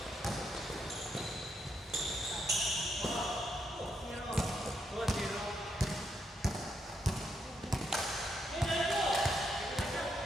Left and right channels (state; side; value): normal; both; correlation 0.79